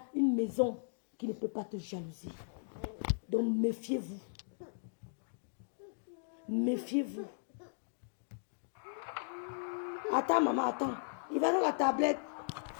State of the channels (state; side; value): silent; right; digital silence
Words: une maison qui ne peut pas te jalouser. Donc, méfiez-vous. Méfiez-vous. Attends, maman, attends. Il va dans la tablette.